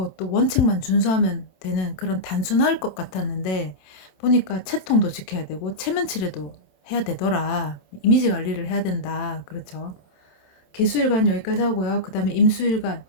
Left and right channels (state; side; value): late; right; 27 ms